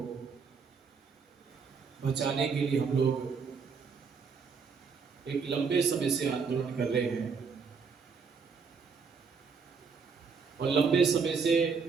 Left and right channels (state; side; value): quieter; left; 5.4 dB